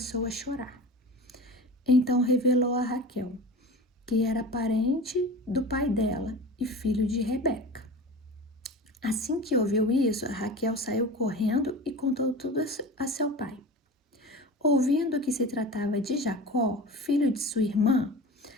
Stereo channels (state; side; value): normal; both; correlation 0.33